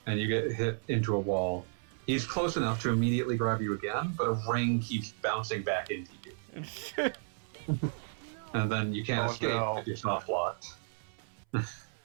and you get hit into a wall. He's close enough to immediately grab you again, but a ring keeps bouncing back into you. And then you can't escape if you're soft locked.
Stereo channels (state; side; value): silent; left; 56 dB below the other